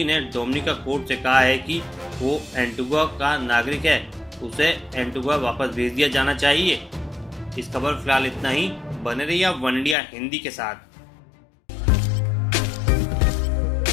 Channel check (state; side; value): drops out; right; at 10.0 s